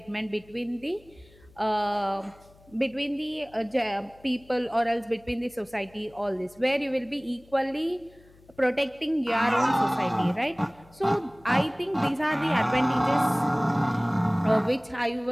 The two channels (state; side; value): noise; left; hum, 27 dB below the sound